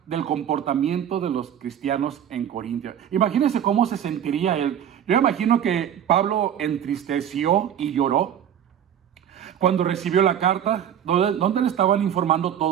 del comportamiento de los cristianos en Corintia. Imagínense cómo se sentiría él. Yo imagino que Pablo entristeció y lloró cuando recibió la carta, donde le estaban informando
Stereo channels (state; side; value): quieter; left; 9.6 dB